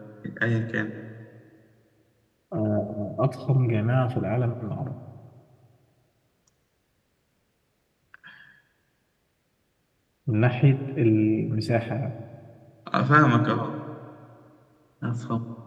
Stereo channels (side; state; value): both; identical; correlation 1.00